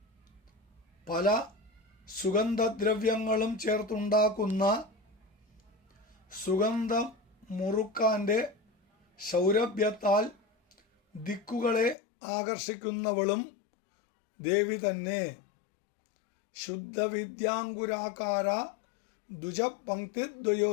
പല സുഗന്ധദ്രവ്യങ്ങളും ചേർത്തുണ്ടാക്കുന്ന സുഗന്ധം മുറുക്കാൻ്റെ സൗരഭ്യത്താൽ ദിക്കുകളെ ആകർഷിക്കുന്നവളും ദേവി തന്നെ. ശുദ്ധവിദ്യാങ്കുരാകാര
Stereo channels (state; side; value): drops out; right; at 12.0 s